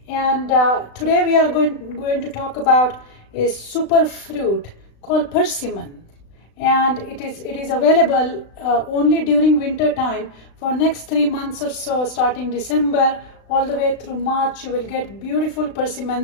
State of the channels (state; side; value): late; right; 36 ms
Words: And today we are going to talk about a super fruit called persimmon. And it is available only during winter time for next 3 months or so, starting December all the way through March. You will get beautiful